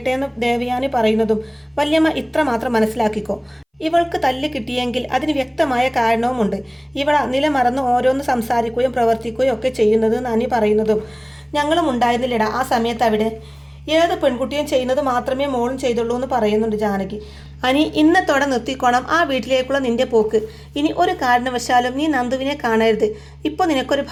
എന്ന് ദേവയാനി പറയുന്നതും വല്യമ്മ ഇത്ര മാത്രം മനസ്സിലാക്കിക്കോ, ഇവൾക്ക് തല്ല് കിട്ടിയെങ്കിൽ അതിന് വ്യക്തമായ കാരണവുമുണ്ട്. ഇവള നിലമറന്ന് ഓരോന്ന് സംസാരിക്കുകയും പ്രവർത്തിക്കുകയും ഒക്കെ ചെയ്യുന്നത് നനി പറയുന്നതും ഞങ്ങളും ഉണ്ടായിരുന്നില്ലടാ ആ സമയത്ത് അവിടെ. ഏത് പെൺകുട്ടിയും ചെയ്യുന്നത് മാത്രമേ മോളും ചെയ്തുള്ളൂ എന്ന് പറയുന്നുണ്ട് ജാനകി. അനി ഇന്നത്തോടെ നിർത്തിക്കോണം ആ വീട്ടിലേക്കുള്ള നിന്റെ പോക്ക്. ഇനി ഒരു കാരണവശാലും നീ നന്ദുവിനെ കാണരുത്. ഇപ്പോൾ നിനക്കൊരു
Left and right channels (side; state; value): both; identical; correlation 1.00